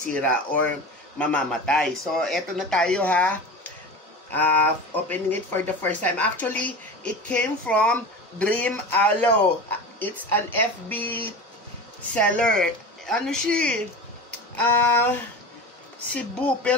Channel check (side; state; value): both; normal; correlation 0.30